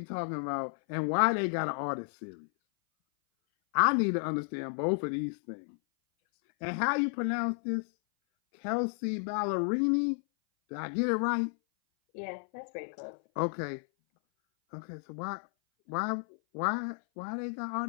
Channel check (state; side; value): silent; right; 56 dB below the other